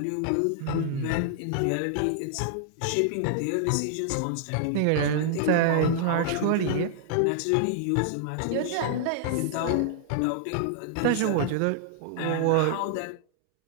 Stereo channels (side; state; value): both; different; correlation -0.01